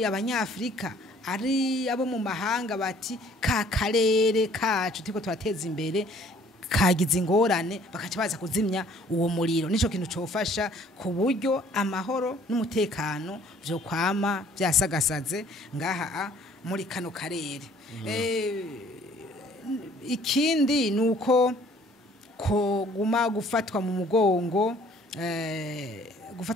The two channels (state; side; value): normal; both; correlation 0.57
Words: abanyafrika ari abo mu mahanga bati ka karere kacu tiko turateza imbere kagize ingorane bakaca baza kuzimya uwo muriro nico kintu cofasha ku buryo amahoro n'umutekano byo kwama byasagasaze ngaha muri kano karere ikindi nuko ko guma gufatwa mu